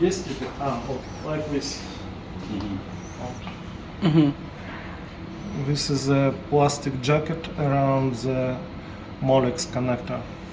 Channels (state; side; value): identical; both; correlation 1.00